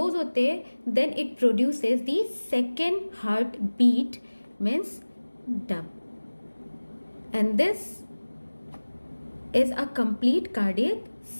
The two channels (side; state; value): both; inverted; correlation -1.00